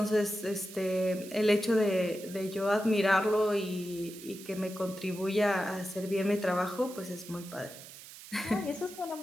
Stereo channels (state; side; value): noise; right; hiss, 16 dB below the sound